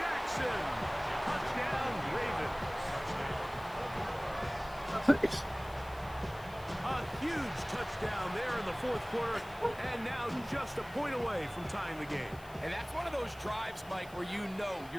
Touchdown, Ravens. A huge touchdown there in the 4th quarter, and now just a point away from tying the game. And that's one of those drives, Mike, where you know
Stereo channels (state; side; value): noise; left; hiss, 22 dB below the sound